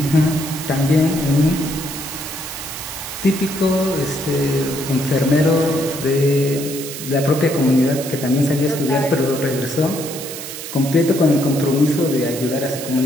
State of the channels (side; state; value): right; noise; hiss, 9 dB below the sound